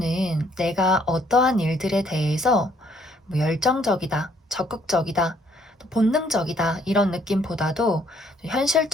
내가 어떠한 일들에 대해서 열정적이다, 적극적이다, 또 본능적이다 이런 느낌보다도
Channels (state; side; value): normal; both; correlation 0.65